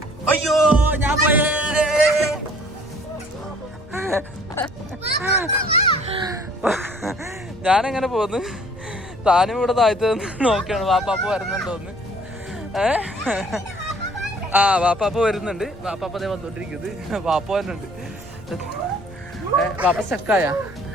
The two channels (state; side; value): normal; both; correlation 0.56